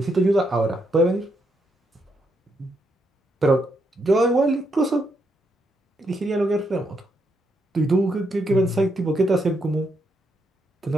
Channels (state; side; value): normal; both; correlation 0.78